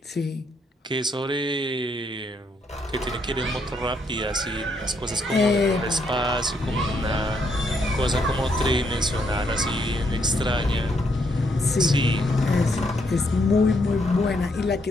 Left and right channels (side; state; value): both; normal; correlation 0.74